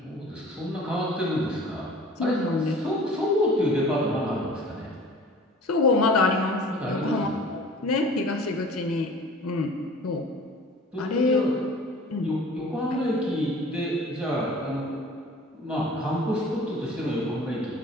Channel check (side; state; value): both; normal; correlation 0.45